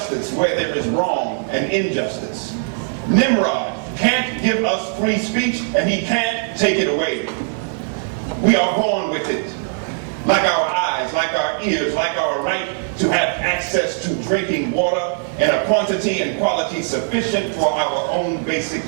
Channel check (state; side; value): silent; left; digital silence